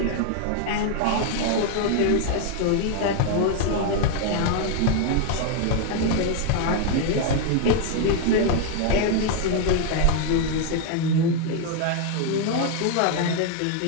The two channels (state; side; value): different; both; correlation 0.00